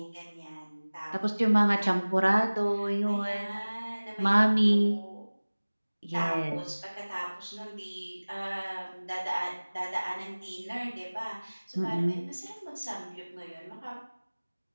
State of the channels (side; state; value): both; inverted; correlation -1.00